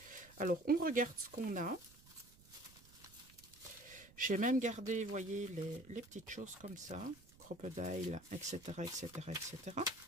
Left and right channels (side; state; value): right; noise; rumble, 23 dB below the sound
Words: Alors, on regarde ce qu'on a. J'ai même gardé, vous voyez, les petites choses comme ça, crocodile, etc., etc., etc.